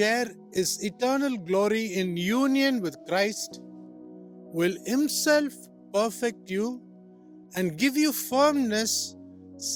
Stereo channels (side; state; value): both; identical; correlation 1.00